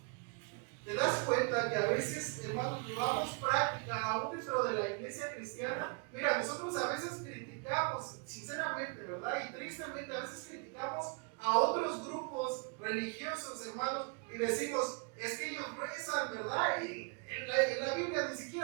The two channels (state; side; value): quieter; left; 35.3 dB